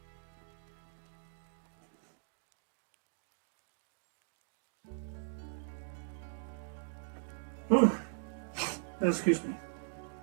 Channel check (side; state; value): left; silent; digital silence